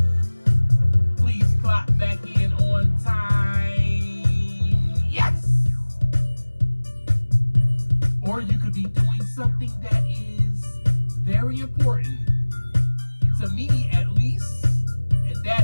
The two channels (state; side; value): inverted; both; correlation -1.00